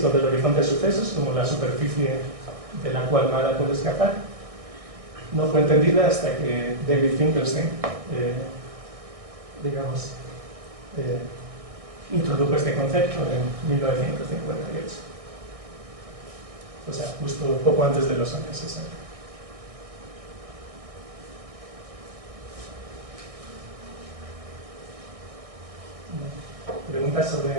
del horizonte de sucesos, como la superficie de la cual nada puede escapar, no fue entendida hasta que David Finkelstein introdujo este concepto en 1958. O sea, justo poco antes de los años 60. ¿Preguntas sobre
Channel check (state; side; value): late; left; 1.6 ms